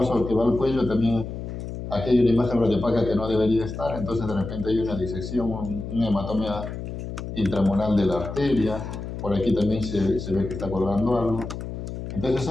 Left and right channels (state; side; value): noise; left; hum, 7 dB below the sound